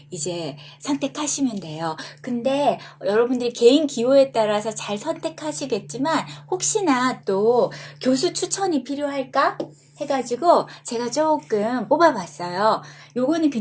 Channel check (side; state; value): both; identical; correlation 1.00